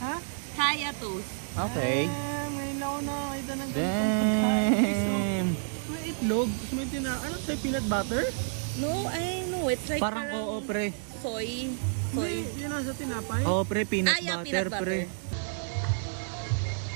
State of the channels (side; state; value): left; silent; 58 dB below the other